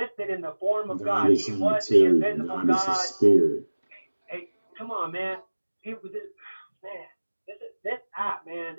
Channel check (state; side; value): inverted; both; correlation -1.00